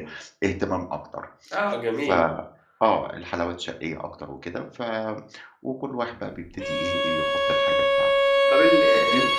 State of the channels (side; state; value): both; identical; correlation 1.00